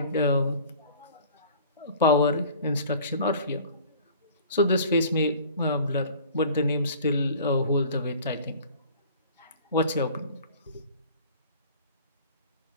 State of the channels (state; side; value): inverted; both; correlation -0.46